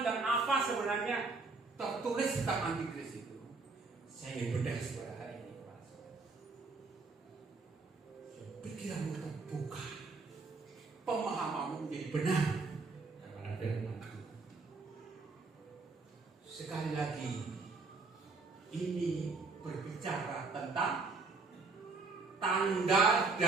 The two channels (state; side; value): quieter; left; 4.0 dB